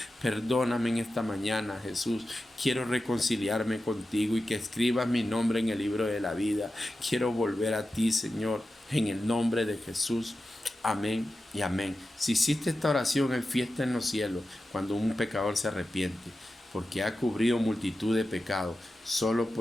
Perdóname en esta mañana, Jesús. Quiero reconciliarme contigo y que escribas mi nombre en el libro de la vida. Quiero volver a ti, Señor, en el nombre de Jesús. Amén y amén. Si hiciste esta oración, hay fiesta en los cielos cuando un pecador se arrepiente, porque ha cubrido multitud de pecados solo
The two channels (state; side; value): normal; both; correlation 0.92